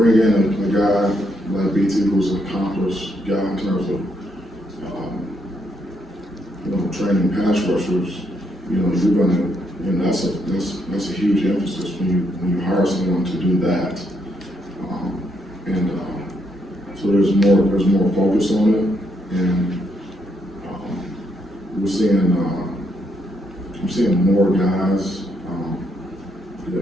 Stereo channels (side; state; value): both; normal; correlation 0.76